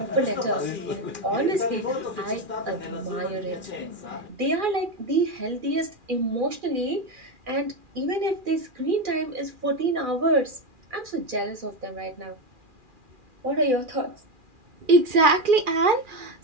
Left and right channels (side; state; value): left; late; 2.4 ms